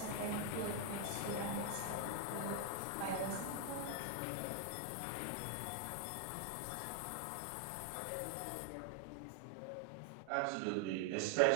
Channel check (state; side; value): different; both; correlation 0.00